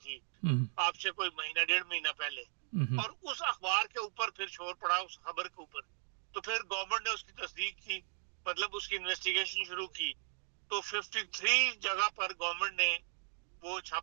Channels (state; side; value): silent; left; digital silence